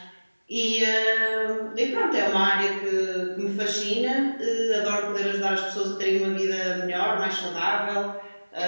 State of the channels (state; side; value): inverted; both; correlation -1.00